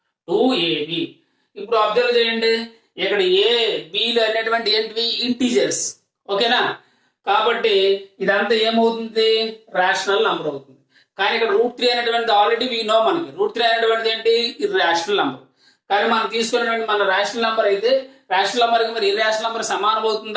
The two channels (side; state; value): both; identical; correlation 1.00